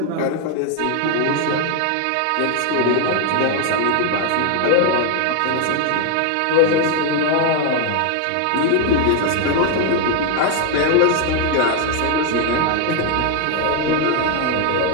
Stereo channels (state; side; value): different; both; correlation 0.01